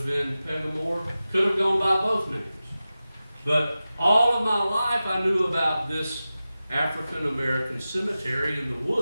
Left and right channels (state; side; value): inverted; both; correlation -0.94